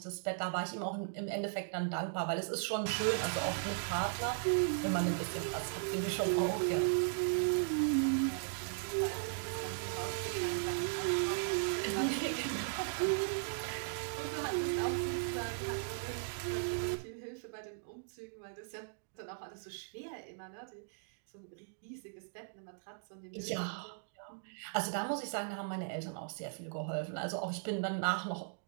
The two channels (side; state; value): left; silent; digital silence